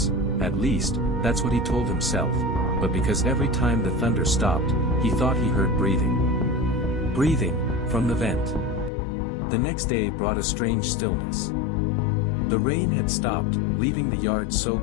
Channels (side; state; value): right; drops out; at 8.9 s